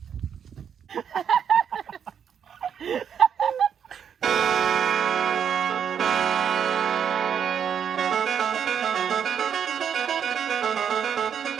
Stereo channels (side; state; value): left; quieter; 8.0 dB